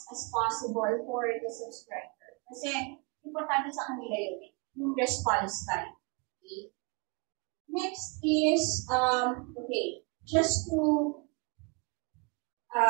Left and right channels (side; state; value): left; quieter; 31.6 dB